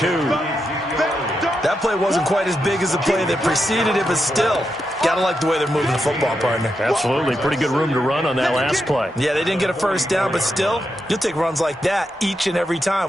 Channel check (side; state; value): both; normal; correlation 0.85